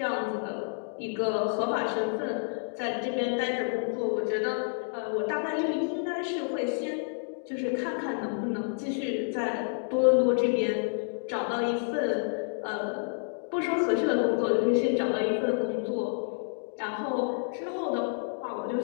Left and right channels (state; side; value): silent; right; digital silence